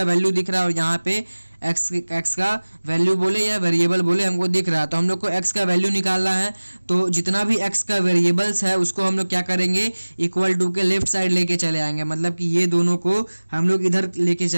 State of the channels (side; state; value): both; inverted; correlation -1.00